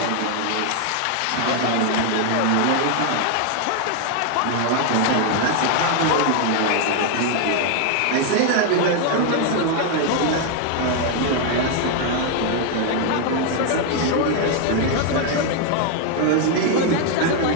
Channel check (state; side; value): different; both; correlation 0.00